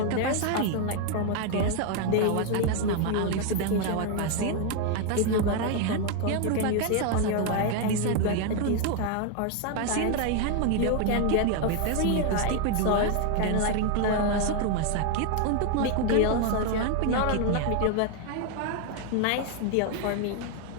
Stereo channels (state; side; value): different; both; correlation 0.01